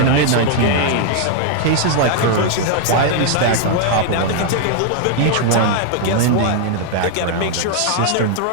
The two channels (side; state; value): both; different; correlation 0.00